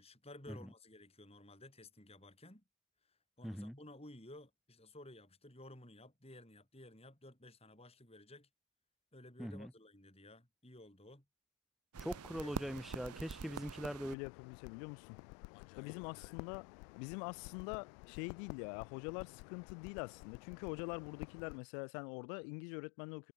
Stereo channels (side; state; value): right; drops out; at 14.2 s